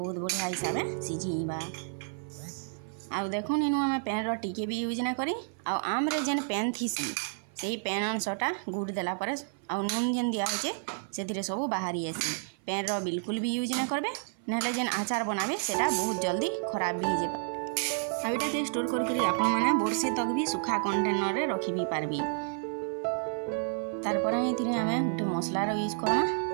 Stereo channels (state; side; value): silent; left; 56 dB below the other